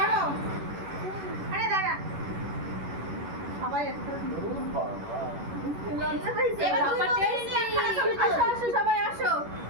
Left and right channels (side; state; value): left; late; 11 ms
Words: আরে দাঁড়া। সবাই একটা লজ্জা পাইছে। এবার বাবা টেস্টি। আসো আসো সবাই আসো।